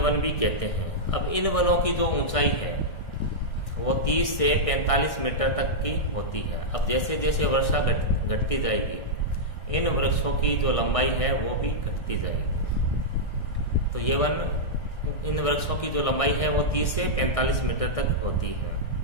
वन भी कहते हैं। अब इन वनों की जो ऊंचाई है वो 30 से 45 मीटर तक की होती है। अब जैसे जैसे वर्षा घटती जाएगी, इन वृक्षों की जो लंबाई है वो भी घटती जाएगी। तो ये वन, इन वृक्षों की जो लंबाई है वो 30 से 45 मीटर तक होती है।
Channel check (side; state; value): right; late; 1.6 ms